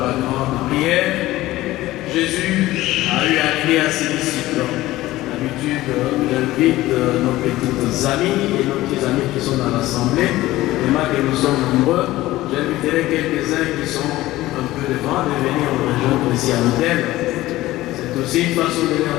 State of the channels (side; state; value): right; quieter; 16.9 dB